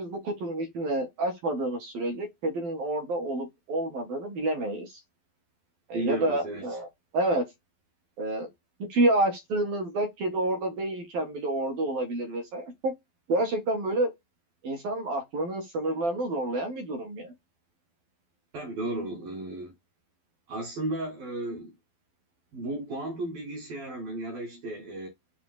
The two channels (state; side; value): late; left; 12 ms